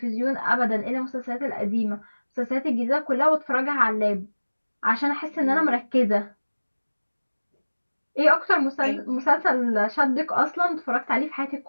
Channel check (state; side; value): inverted; both; correlation -1.00